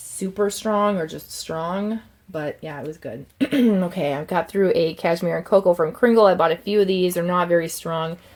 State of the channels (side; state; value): both; identical; correlation 1.00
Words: strong or just strong, but yeah, it was good. Okay, I've got through a cashmere and cocoa from Cringle. I bought a few of these. They're not very strong.